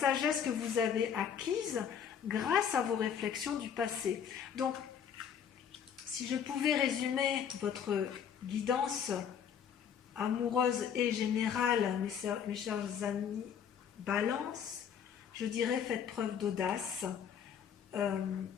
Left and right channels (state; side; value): quieter; right; 8.0 dB